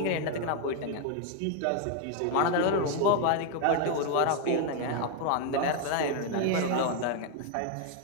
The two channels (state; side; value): different; both; correlation 0.01